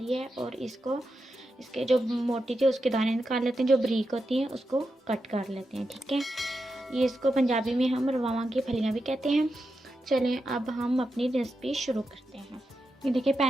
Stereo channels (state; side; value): normal; both; correlation 0.88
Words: है और इसके जो मोटी थी उसके दाने निकाल लेते हैं, जो बारीक होती हैं उसको कट कर लेते हैं। ठीक है, ये इसको पंजाबी में हम रवां की फलियाँ भी कहते हैं। चलें अब हम अपनी रेसिपी शुरू करते हैं। ये देखिए